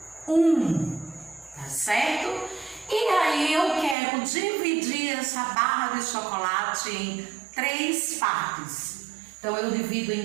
tá certo? E aí eu quero dividir essa barra de chocolate em 3 partes. Então eu divido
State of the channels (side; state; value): left; drops out; at 4.0 s